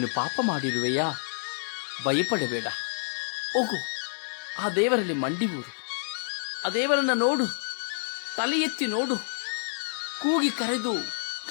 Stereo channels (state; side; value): silent; right; digital silence